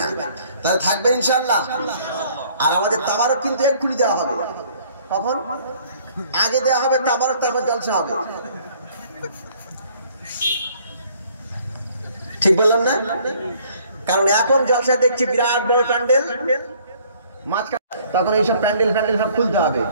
তাহলে থাকবে ইনশাআল্লাহ। আর আমাদের তাবারক কিন্তু এক্ষুনি দেওয়া হবে। কখন? আগে দেওয়া হবে তাবারক, তারপর জলসা হবে। ঠিক বললাম না? কারণ এখন জলসা দেখছি বিরাট বড় প্যান্ডেল, তখন এইসব প্যান্ডেল সব খুলতে হবে।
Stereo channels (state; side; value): inverted; both; correlation -0.59